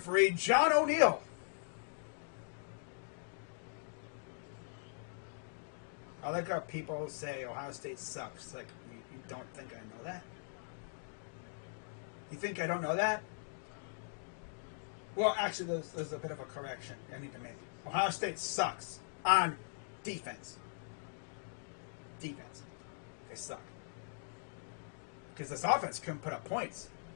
John O'Neill. I like how people say Ohio State sucks. Like, you don't think I know that? You think I don't know that? Well, actually, there's a bit of a correction I need to make. Ohio State sucks on defense. Defense. They suck. Because this offense couldn't put up points.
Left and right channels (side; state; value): right; silent; digital silence